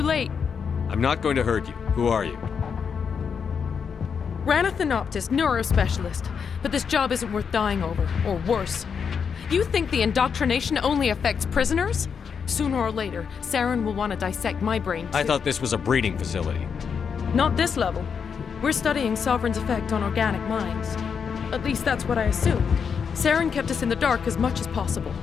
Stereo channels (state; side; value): quieter; right; 6.5 dB